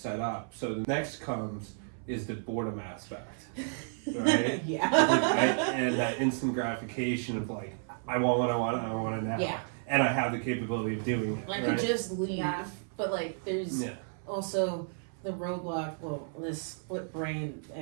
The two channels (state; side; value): silent; left; 56 dB below the other